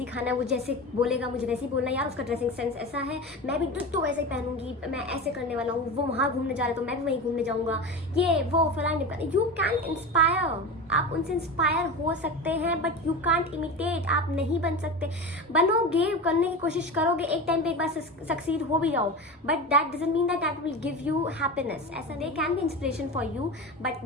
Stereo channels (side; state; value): both; normal; correlation 0.26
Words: ही खाना है, वो जैसे बोलेगा मुझे वैसे ही बोलना है। यार उसका ड्रेसिंग सेंस ऐसा है, मैं भी तो वैसे ही पहनूंगी, मैं ऐसे करने वाला हूँ। वो वहाँ घूमने जा रहा है तो मैं भी वहीं घूमने जाऊँगा, ये वो फलाने। यू कैन इंस्पायर, आप उनसे इंस्पायर हो सकते हैं, बट यू कांट इमिटेट। आप नहीं बन सकते। बनोगे, करने की कोशिश करोगे, एक टाइम पे एक बार सक्सीड हो भी जाओ, but that doesn't mean that will give you happiness. ऐसा they can be inspiration for you, but